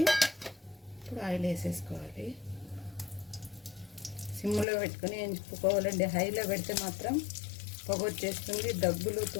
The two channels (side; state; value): right; drops out; at 4.7 s